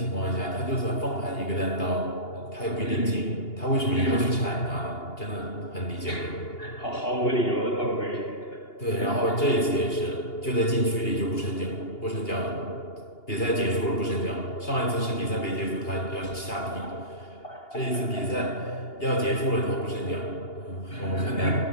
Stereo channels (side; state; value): right; late; 2.8 ms